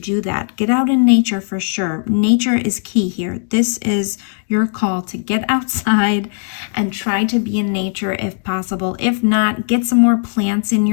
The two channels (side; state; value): right; silent; 68 dB below the other